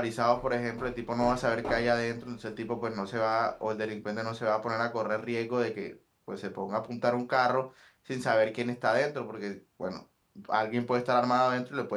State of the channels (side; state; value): both; identical; correlation 1.00